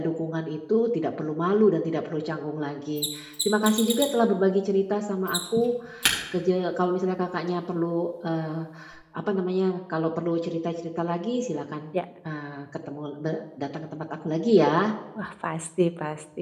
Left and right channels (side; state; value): both; identical; correlation 1.00